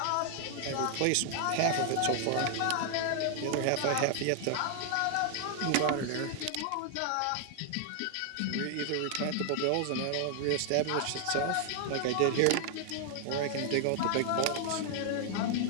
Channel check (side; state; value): both; different; correlation 0.00